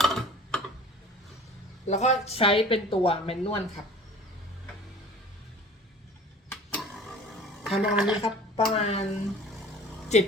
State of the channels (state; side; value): normal; both; correlation 0.44